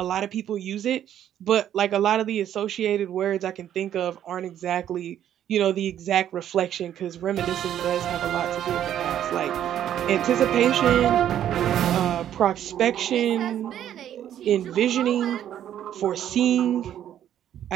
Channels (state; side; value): quieter; left; 10.7 dB